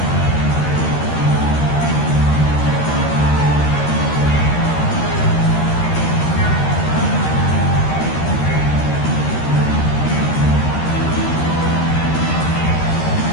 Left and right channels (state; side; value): late; right; 13 ms